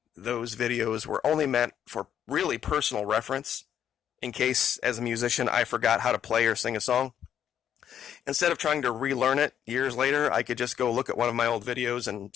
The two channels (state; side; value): quieter; right; 9.5 dB